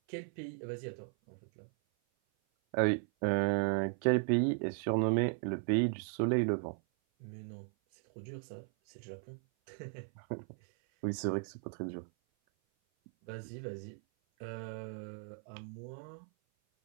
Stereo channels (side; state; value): left; silent; 53 dB below the other